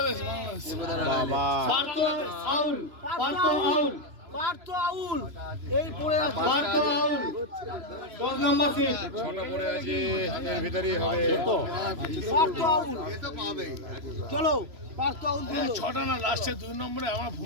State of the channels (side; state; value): left; late; 3.0 ms